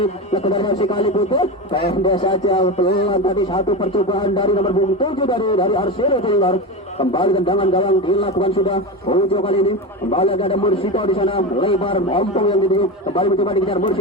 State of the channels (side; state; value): both; normal; correlation 0.21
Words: legendaris FC Kali Putih. Pendek saja peluang tadi, satu percobaan dari nomor 7 dari Arsino Ceninglor. Kembali tendangan gawang dilakukan sudah. Ujo kali ini kembali ada Mursito di sana, lebar ompong yang dituju. Kembali mencoba dikejar